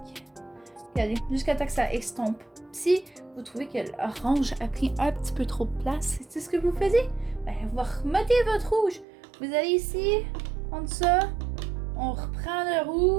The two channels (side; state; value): left; drops out; at 9.1 s